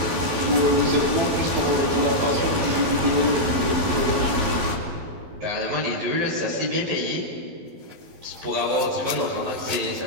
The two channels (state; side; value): late; left; 12 ms